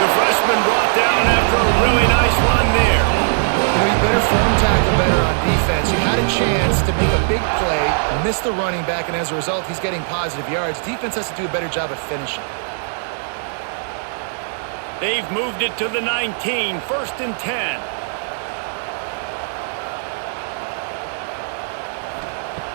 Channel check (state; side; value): silent; left; digital silence